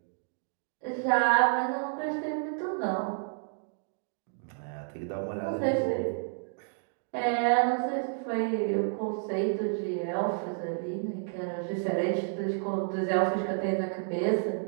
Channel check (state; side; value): silent; left; digital silence